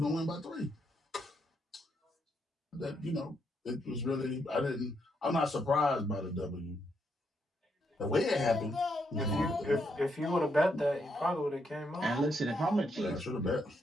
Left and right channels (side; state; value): both; normal; correlation 0.78